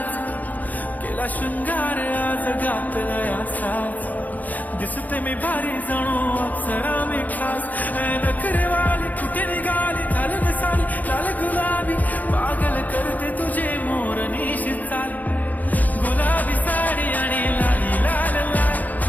केला शृंगार आज घातलाय असाच, दिसते मी भारी जणू अप्सरा मी खास. नखरेवाली कुठे निघाली घालून साली लाल गुलाबी, पागल करते तुझे मोरनीशी चाल. गुलाबी साडी आणि लाली लाल लाल,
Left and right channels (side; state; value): right; late; 0.080 ms